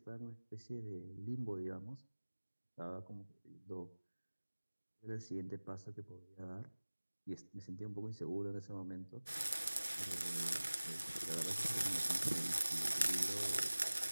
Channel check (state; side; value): inverted; both; correlation -1.00